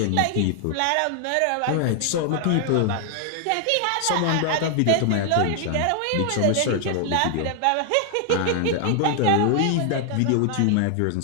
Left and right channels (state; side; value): different; both; correlation 0.00